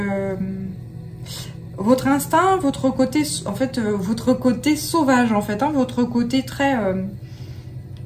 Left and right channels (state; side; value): identical; both; correlation 1.00